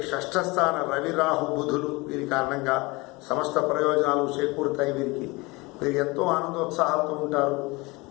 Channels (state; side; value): quieter; right; 24.4 dB